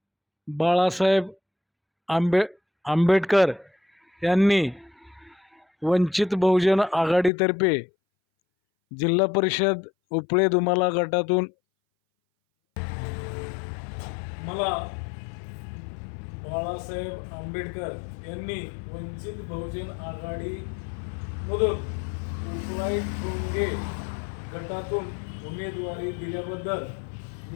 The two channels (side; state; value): right; drops out; at 7.3 s